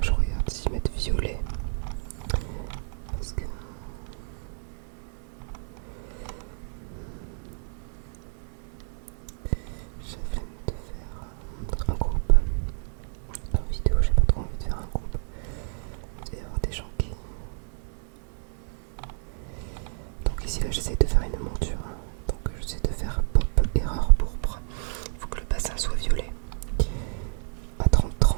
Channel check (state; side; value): silent; left; 59 dB below the other